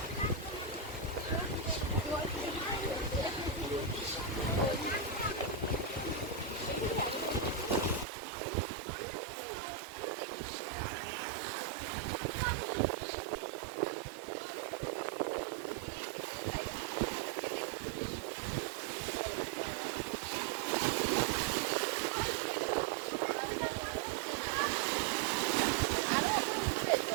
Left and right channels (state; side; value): drops out; left; at 8.1 s